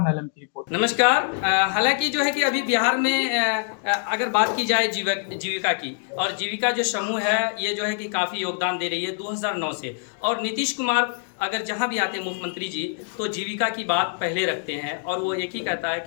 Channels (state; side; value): silent; right; 62 dB below the other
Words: आलम की रिपोर्ट। नमस्कार। हालांकि जो है कि अभी बिहार में अगर बात की जाए जीविका की, और जीविका जो समूह है ये जो है कि काफ़ी योगदान दे रही है 2009 से। और नीतीश कुमार अगर जहाँ भी आते हैं मुख्यमंत्री जी तो जीविका की बात पहले रखते हैं और वो एक ही कहता है